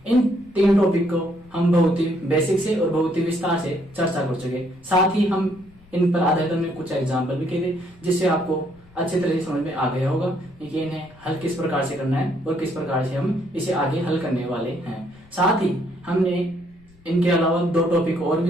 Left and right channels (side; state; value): left; noise; rumble, 28 dB below the sound